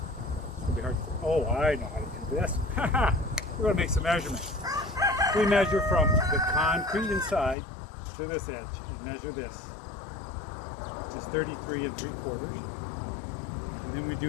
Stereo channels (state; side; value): drops out; right; at 7.6 s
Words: to be hard to, oh, I know how to do this. We're going to make some measurements. We measure from the concrete inside to this edge and measure this, which is 33 3/4. And then we